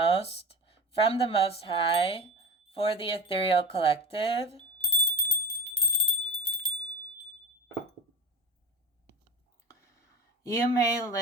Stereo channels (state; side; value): normal; both; correlation 0.30